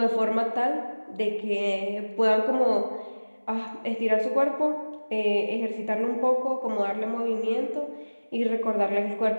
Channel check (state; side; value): inverted; both; correlation -1.00